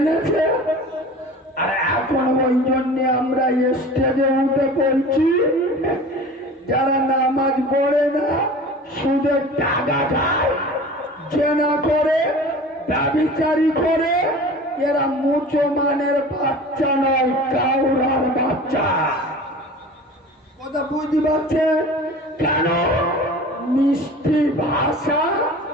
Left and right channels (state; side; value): normal; both; correlation 0.39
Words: আর এখন ওই জন্য আমরা স্টেজে উঠে বলছি, যারা নামাজ পড়ে না, সুদের টাকা খায়, জেনা করে, ব্যভিচারী করে, এরা মুসলমানের বাচ্চা নয়, কাউরার বাচ্চা। কথা বুঝতে পারছে? কেন? মিষ্টি ভাষা